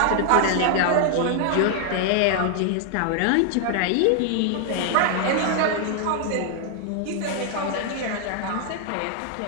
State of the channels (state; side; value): different; both; correlation 0.00